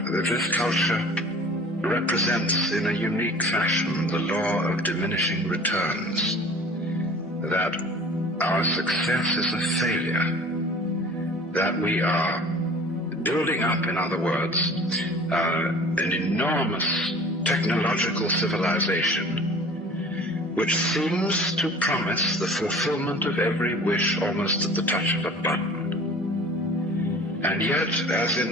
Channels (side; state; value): both; normal; correlation 0.45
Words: this culture represents in a unique fashion the law of diminishing returns, that our success is a failure, that we are building up, in other words, an enormous technological civilization which seems to promise the fulfillment of every wish almost at the touch of a button. And yet, as in